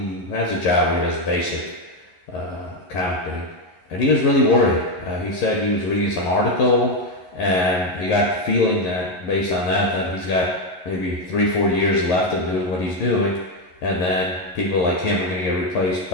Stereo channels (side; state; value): right; late; 11 ms